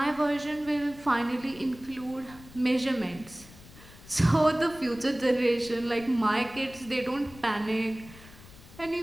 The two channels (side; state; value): left; noise; rumble, 20 dB below the sound